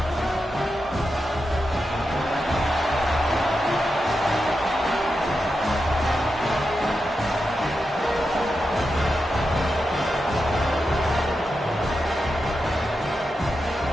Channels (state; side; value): normal; both; correlation 0.88